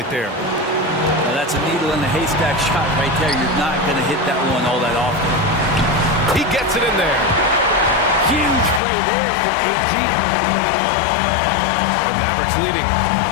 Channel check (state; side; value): drops out; right; at 8.8 s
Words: there. Now that's a needle in the haystack shot right there. You're not going to hit that one all that often. He gets it in there. Huge play there from AG. The Mavericks leading.